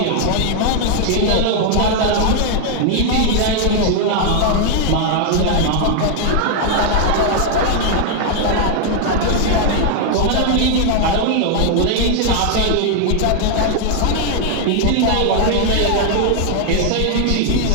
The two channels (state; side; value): different; both; correlation 0.00